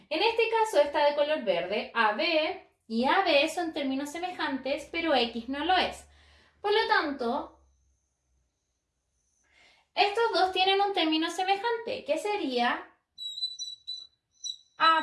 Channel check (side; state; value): both; identical; correlation 1.00